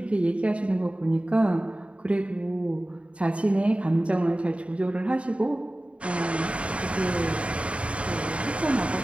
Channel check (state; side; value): late; left; 0.062 ms